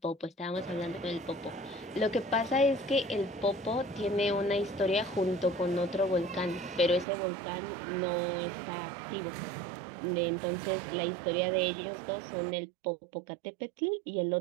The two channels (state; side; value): drops out; left; at 7.1 s